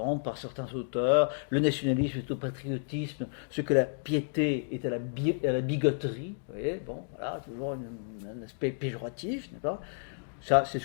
par certains auteurs. Le nationalisme est au patriotisme, ce que la piété est à la bigoterie. Vous voyez, bon, voilà, toujours un aspect péjoratif, n'est-ce pas? Ça, c'est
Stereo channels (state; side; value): silent; right; digital silence